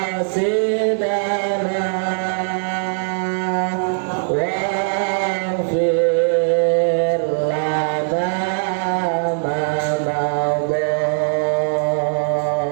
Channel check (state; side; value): silent; left; digital silence